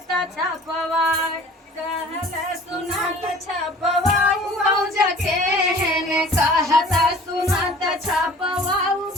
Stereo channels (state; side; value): normal; both; correlation 0.47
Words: छपवाई कहले सुनात छपवाऊ बौज के हेने कहता सुनात छपवाऊ